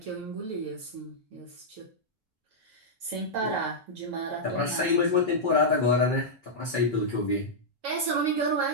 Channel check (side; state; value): both; normal; correlation -0.07